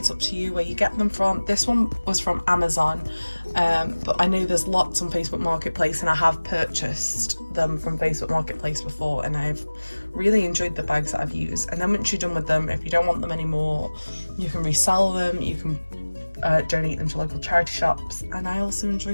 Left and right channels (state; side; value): inverted; both; correlation -1.00